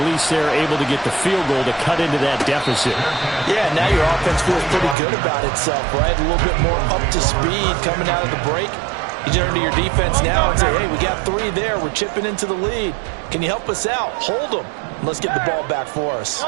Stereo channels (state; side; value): drops out; left; at 5.0 s